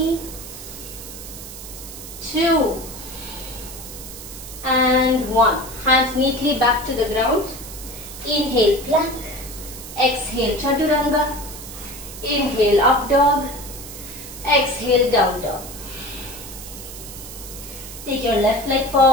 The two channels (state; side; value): noise; right; hiss, 12 dB below the sound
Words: 2, and 1. Hands neatly back to the ground. Inhale, plank. Exhale, Chaturanga. Inhale, up dog. Exhale, down dog. Take your left leg